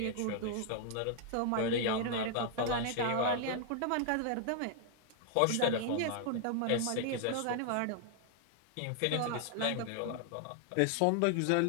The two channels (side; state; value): both; different; correlation 0.00